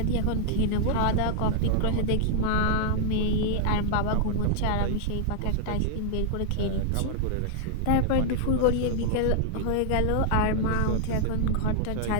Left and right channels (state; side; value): different; both; correlation 0.00